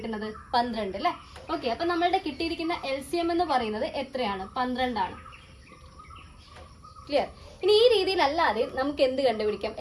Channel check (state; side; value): identical; both; correlation 1.00